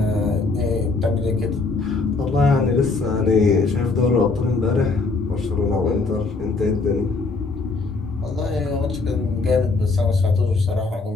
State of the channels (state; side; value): quieter; right; 3.8 dB